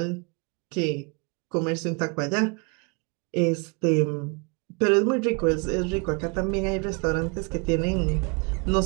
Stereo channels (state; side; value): quieter; left; 32.7 dB